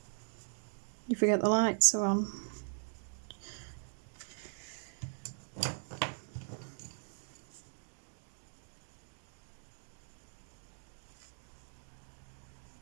You forget the lights are on.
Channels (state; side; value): silent; left; digital silence